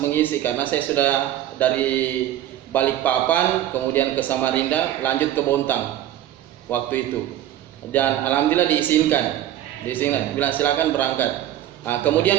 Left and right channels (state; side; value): quieter; left; 12.3 dB